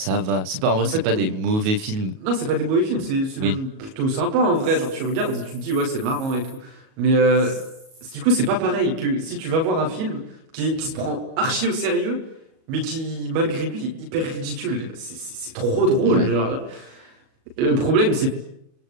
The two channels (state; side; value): late; left; 37 ms